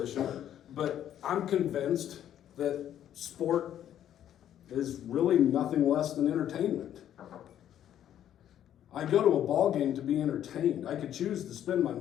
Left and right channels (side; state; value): right; quieter; 10.8 dB